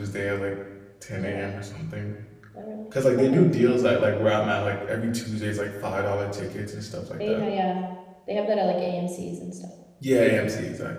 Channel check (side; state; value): both; identical; correlation 1.00